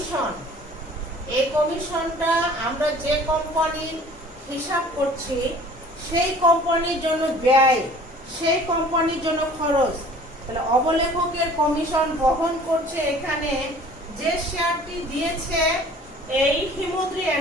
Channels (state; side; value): normal; both; correlation 0.49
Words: এই কমিশনটা আমরা যে কোম্পানির হিসাব করছি সেই কোম্পানির জন্য ব্যয়, সেই কোম্পানির জন্য খরচ। তাহলে অবলেখকের কমিশন বহন করছে এখানে যে শেয়ারটি দিয়েছে এই হিমদ্রি